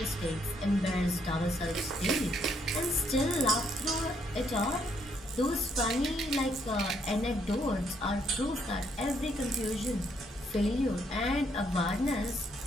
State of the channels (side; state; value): both; normal; correlation 0.72